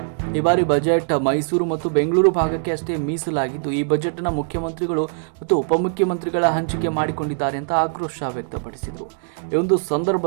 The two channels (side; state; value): left; silent; digital silence